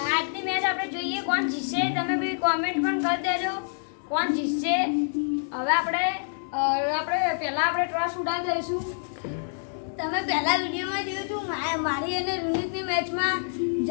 આજની મેચ આપણે જોઈએ કોણ જીતશે. તમે બી કોમેન્ટ પણ કરી દેજો કોણ જીતશે. હવે આપણે પહેલા આપણે ટોસ ઉડાવી દઈશું. તમે પહેલા વિડીયોમાં જોયું હતું મારી અને રોનિકની મેચમાં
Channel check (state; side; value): silent; right; 60 dB below the other